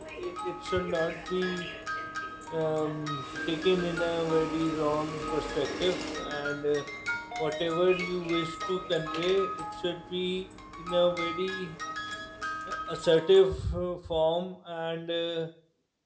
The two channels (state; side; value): identical; both; correlation 1.00